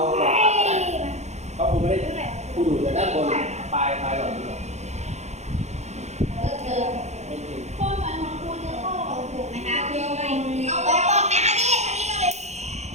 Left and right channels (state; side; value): late; left; 0.33 ms